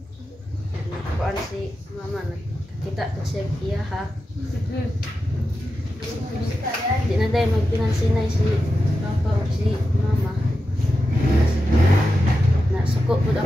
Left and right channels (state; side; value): normal; both; correlation 0.90